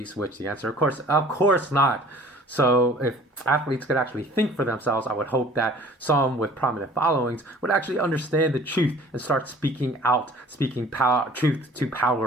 which the answer, of course not. So if athletes could actually think for themselves, I would hope that some with prominent followings would actually understand the truth and start speaking out, speaking truth to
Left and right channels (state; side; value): normal; both; correlation 0.49